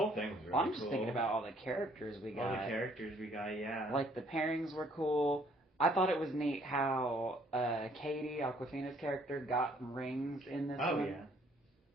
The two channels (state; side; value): normal; both; correlation 0.63